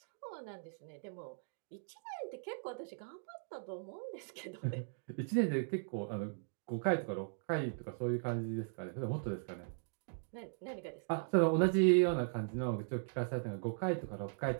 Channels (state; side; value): silent; left; digital silence